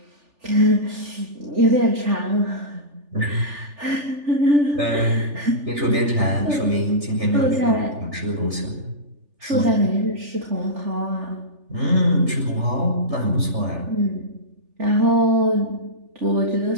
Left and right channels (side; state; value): left; late; 3.4 ms